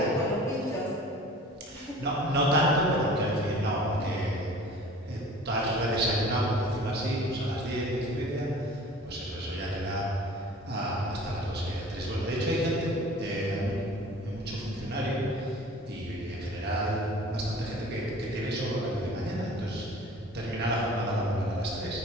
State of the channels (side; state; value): both; normal; correlation 0.45